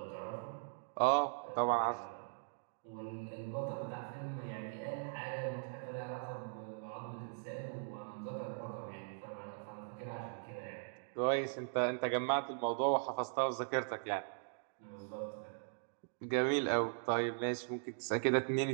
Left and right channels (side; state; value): left; silent; digital silence